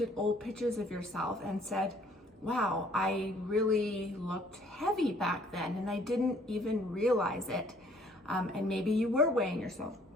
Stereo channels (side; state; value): both; normal; correlation 0.60